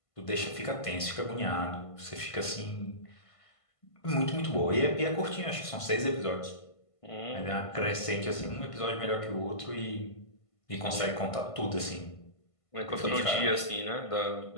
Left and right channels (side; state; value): right; late; 1.5 ms